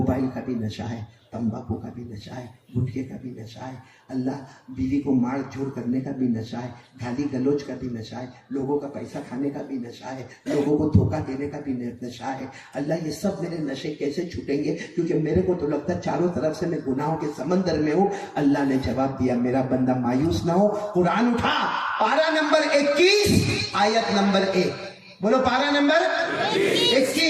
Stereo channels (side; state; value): both; identical; correlation 1.00